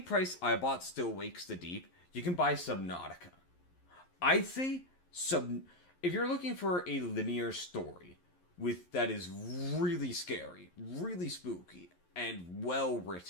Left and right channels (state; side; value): late; right; 11 ms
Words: price I bought Still Wakes the Deep, you can buy Subnautica. I'd say if you're looking for a linear story that is really scary, really spooky, and well